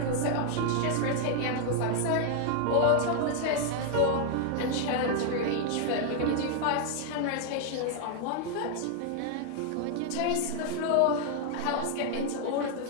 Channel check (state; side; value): different; both; correlation 0.00